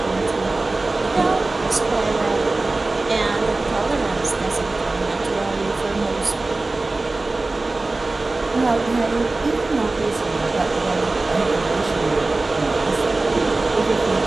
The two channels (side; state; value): left; quieter; 3.2 dB